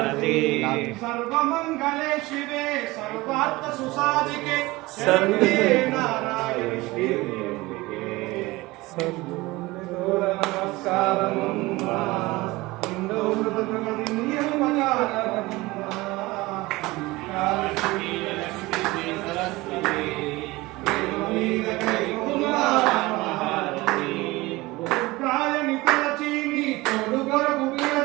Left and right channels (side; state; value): left; quieter; 20.8 dB